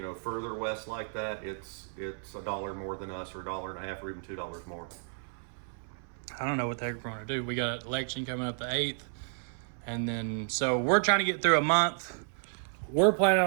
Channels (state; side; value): silent; left; 56 dB below the other